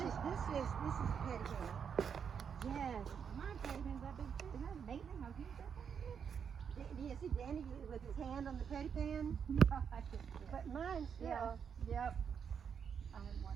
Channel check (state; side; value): quieter; left; 7.2 dB